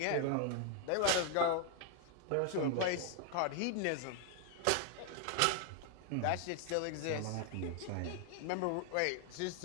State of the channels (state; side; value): different; both; correlation 0.00